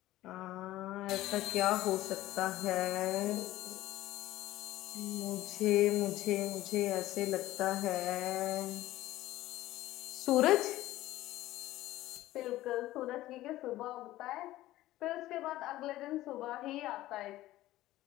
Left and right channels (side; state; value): right; quieter; 15.8 dB